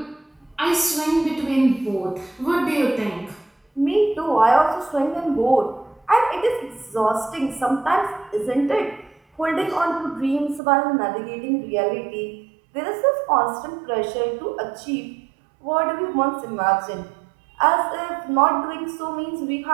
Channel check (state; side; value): drops out; left; at 10.6 s